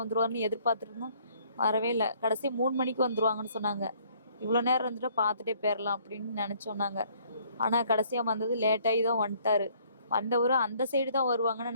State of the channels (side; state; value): both; inverted; correlation -0.62